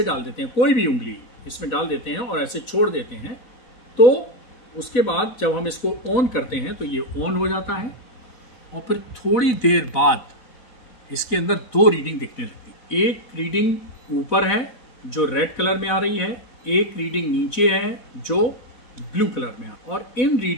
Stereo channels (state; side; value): late; right; 4.0 ms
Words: डाल देते हैं, कोई भी उंगली इसमें डाल देते हैं और ऐसे छोड़ देते हैं, तो उसके बाद जब हम इसको ऑन करते हैं तो ये ऑन हो जाता है और फिर थोड़ी देर बाद इसके अंदर 2 रीडिंग दिखने लगती है। एक रीडिंग ऊपर है जो रेड कलर में आ रही है, एक रीडिंग नीचे है जो ब्लू कलर में आ। और इन